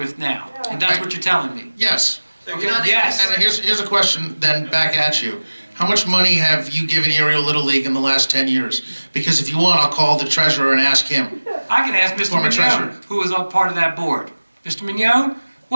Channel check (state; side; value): inverted; both; correlation -1.00